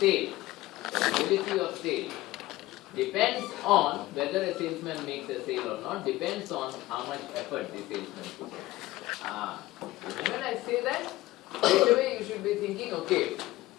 sale depends on whether a salesman makes a sale or not, depends on how much effort the salesman puts in. When I say that, straight away you should be thinking, okay,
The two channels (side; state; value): right; quieter; 17.6 dB